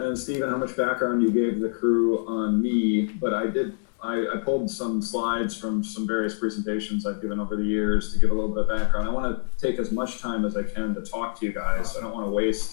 and Steven, how much background you gave the crew on me, but I pulled some slides from some various presentations I've given over the years to give a little bit of background. I want to take as much time as I can to talk to you guys. I don't want to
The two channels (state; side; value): silent; right; digital silence